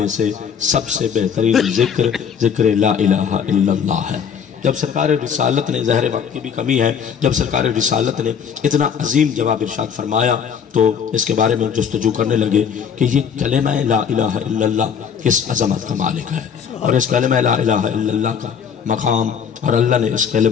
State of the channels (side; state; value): right; quieter; 7.4 dB